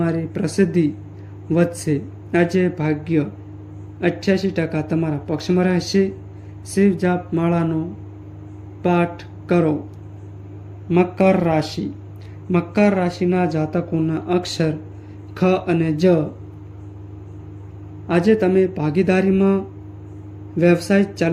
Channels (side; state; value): both; identical; correlation 1.00